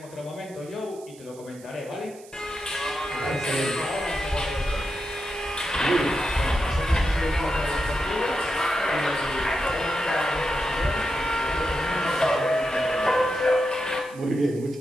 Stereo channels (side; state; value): right; noise; hiss, 22 dB below the sound